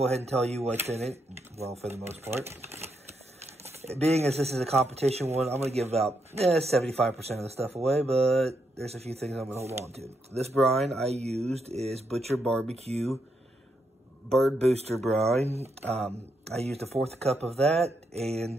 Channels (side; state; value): both; normal; correlation 0.80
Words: ahead and tell you what's in it, well, for the most part. Being as this is a competition one, I'm going to give about 75% of the stuff away, but there's a few things I'm going to hold on to. This brine I used is Butcher Barbecue Bird Booster brine. I used a 1/4 cup of that